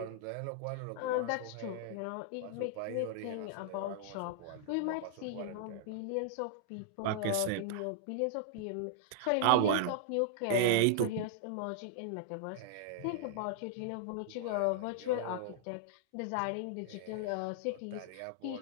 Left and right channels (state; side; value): different; both; correlation -0.01